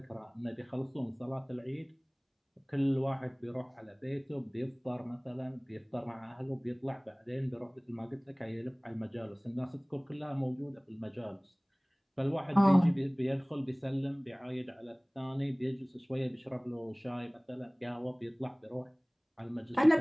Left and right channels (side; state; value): both; identical; correlation 1.00